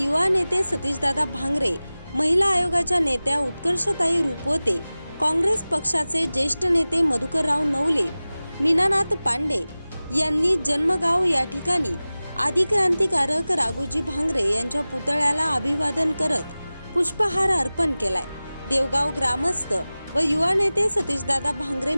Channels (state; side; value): inverted; both; correlation -0.98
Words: नेते सतीशदादा भांगरे, महिला आयोगाच्या नेत्या उत्कर्षताई रुपवते, काँग्रेस पक्षाचे ज्येष्ठ नेते मधुकरराव नवले, मीनानाथ पांडे यांनी जन्मगाव या ठिकाणी आदिक्रांतिकारक राघोजी भांगरे यांच्या पुतळ्याला अभिवादन करत पुष्पहार अर्पण केलाय। देवगाव ग्रामस्थ व युवा नेते सतीशदादा भांगरे